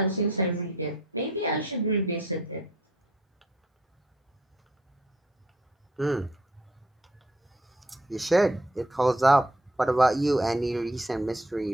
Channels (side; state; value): both; normal; correlation 0.64